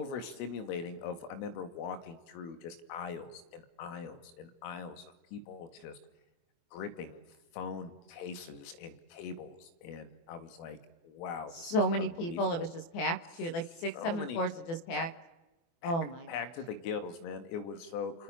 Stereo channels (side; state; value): right; late; 24 ms